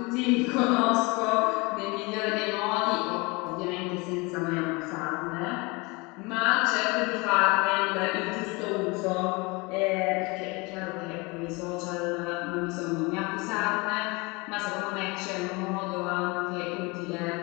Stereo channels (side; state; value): right; quieter; 26.4 dB